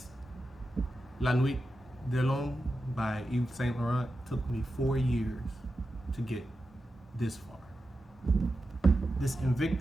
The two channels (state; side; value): normal; both; correlation 0.90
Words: La Nuit de l'Homme by Yves Saint Laurent took me 4 years to get this far. This